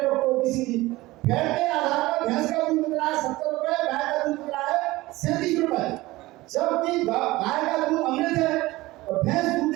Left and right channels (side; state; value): left; quieter; 19.4 dB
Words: डॉक्टर ओबीसी जी, फैट के आधार पर भैंस का दूध मिल रहा है 70 रुपए, गाय का दूध मिल रहा है 37 रुपए। जबकि गाय का दूध अमृत है और भैंस दूध